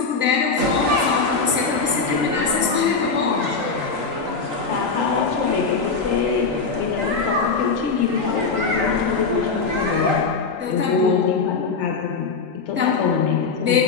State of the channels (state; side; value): quieter; right; 4.7 dB